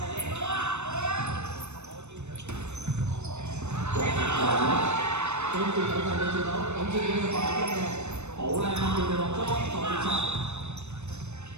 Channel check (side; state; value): left; late; 0.82 ms